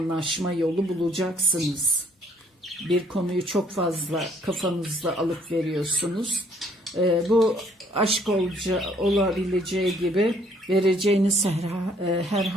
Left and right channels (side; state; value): both; normal; correlation 0.64